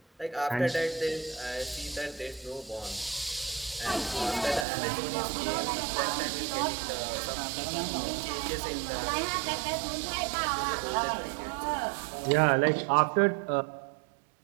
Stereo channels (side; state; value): left; drops out; at 4.7 s